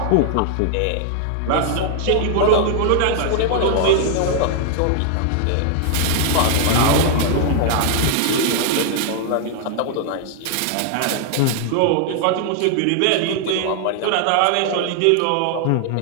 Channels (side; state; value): both; different; correlation 0.00